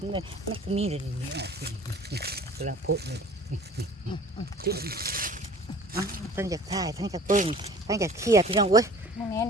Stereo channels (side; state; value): both; normal; correlation 0.47